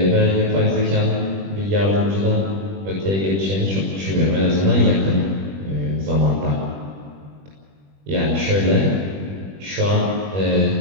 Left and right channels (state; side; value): late; left; 21 ms